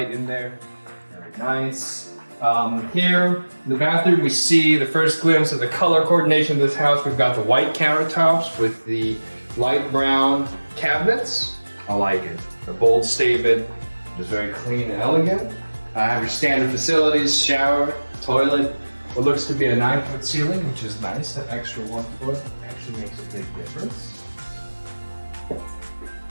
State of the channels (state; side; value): inverted; both; correlation -1.00